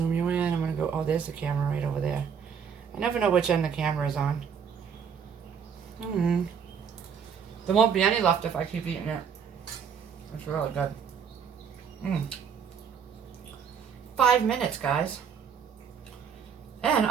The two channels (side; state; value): left; quieter; 7.1 dB